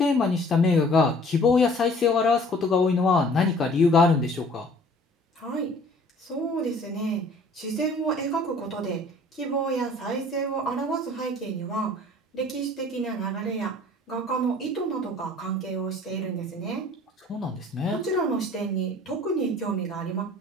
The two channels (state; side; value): normal; both; correlation 0.52